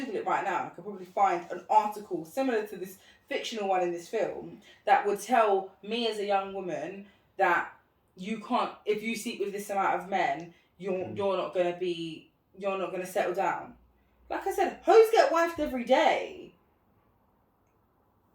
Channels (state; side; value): identical; both; correlation 1.00